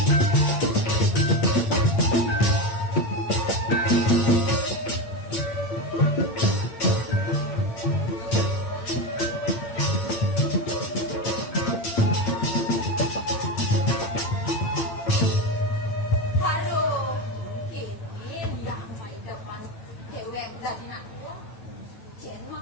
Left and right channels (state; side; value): late; right; 8.9 ms